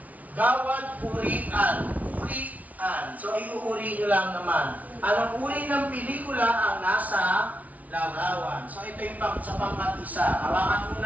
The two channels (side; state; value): left; late; 0.071 ms